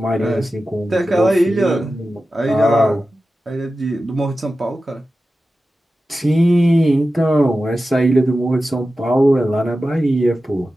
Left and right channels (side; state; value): both; normal; correlation 0.93